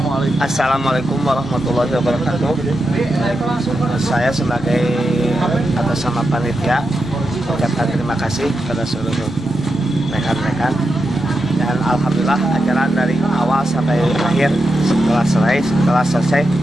Assalamualaikum warahmatullahi wabarakatuh. Saya sebagai atas nama panitia ucapkan terima kasih kepada seluruh rekan-rekan, dan alhamdulillah acara dari awal sampai akhir setelah selesai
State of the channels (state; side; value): normal; both; correlation 0.87